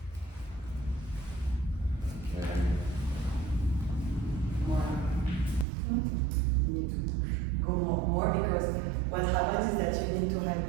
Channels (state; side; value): drops out; left; at 5.7 s